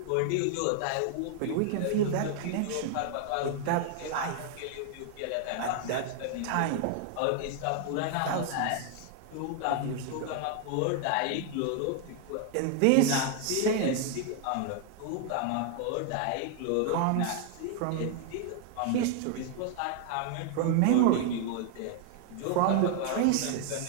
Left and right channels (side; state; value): both; different; correlation 0.00